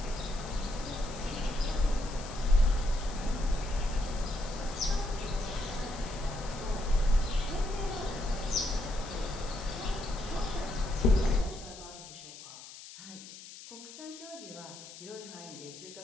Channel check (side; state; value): left; noise; hiss, 15 dB below the sound